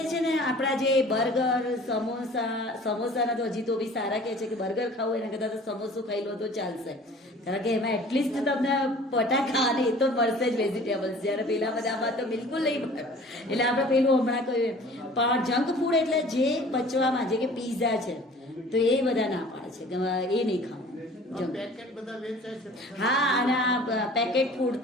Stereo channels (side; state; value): both; normal; correlation 0.47